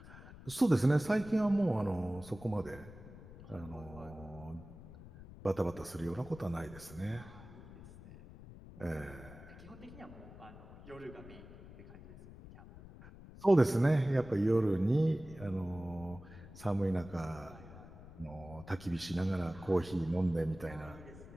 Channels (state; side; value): noise; left; rumble, 17 dB below the sound